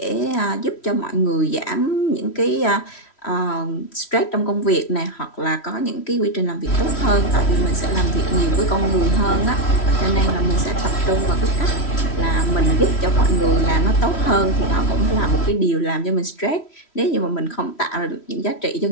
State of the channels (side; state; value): right; late; 3.1 ms